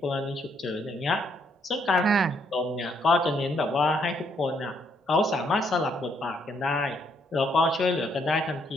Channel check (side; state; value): both; normal; correlation 0.72